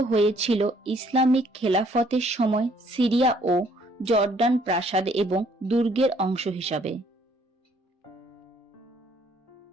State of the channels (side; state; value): both; normal; correlation 0.63